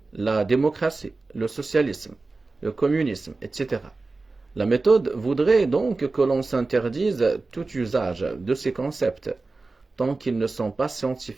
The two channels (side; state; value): left; quieter; 3.6 dB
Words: la démocratie, le socialisme, le communisme, etc. La méthode voudrait donc que l'on s'interdise tout usage de ces concepts, tant qu'ils ne sont pas